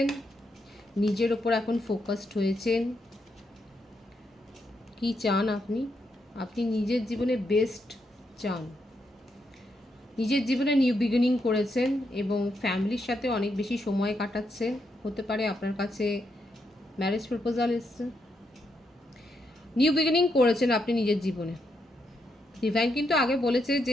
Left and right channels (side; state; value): both; normal; correlation 0.80